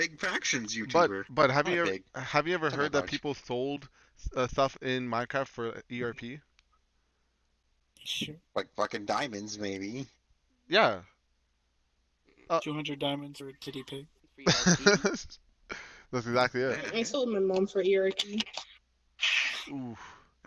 factions But YouTuber. but have Not you ever big. heard that that much. people sold stuff in Minecraft for ERP? Sure. Like fucking diamonds, maybe. Yeah. 200 diamonds or a titty pig. That's exactly it. I sold my mom for ERP. Ooh.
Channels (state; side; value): identical; both; correlation 1.00